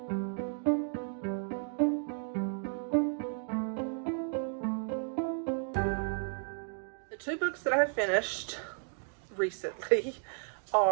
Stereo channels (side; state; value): left; silent; 55 dB below the other